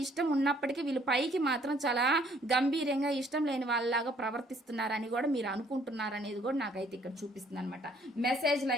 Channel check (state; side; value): normal; both; correlation 0.63